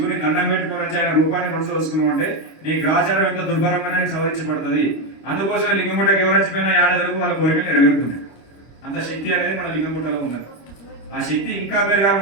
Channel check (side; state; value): right; late; 25 ms